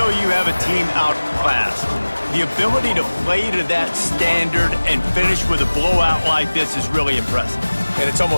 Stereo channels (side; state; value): both; inverted; correlation -1.00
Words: you have a team outclassed, the ability to play to that standard and finish with a blowout like this is really impressive. and it's